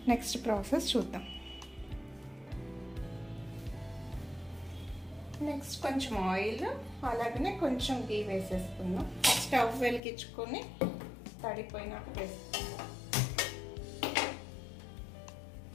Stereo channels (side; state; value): right; drops out; at 10.0 s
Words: నెక్స్ట్ ప్రాసెస్ చూద్దాం. నెక్స్ట్ కొంచెం ఆయిల్ అలాగనే కొంచెం గీ వేసేసుకుందాం. స్టవ్ వెలిగించుకొని తడిపోయినాక వేసుకుందాం.